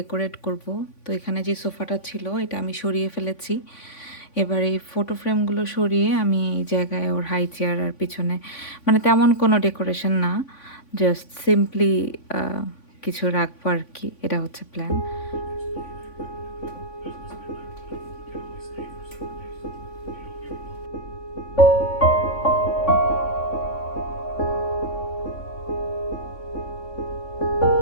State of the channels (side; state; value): right; late; 3.5 ms